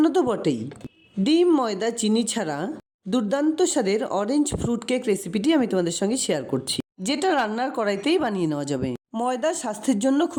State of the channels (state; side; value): identical; both; correlation 1.00